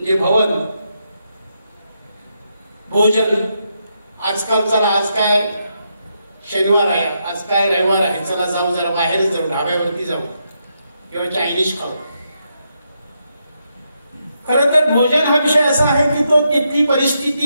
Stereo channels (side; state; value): both; inverted; correlation -0.81